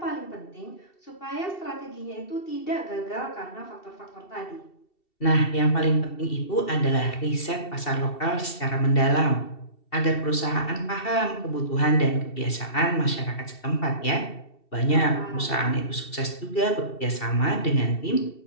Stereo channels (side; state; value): right; late; 2.7 ms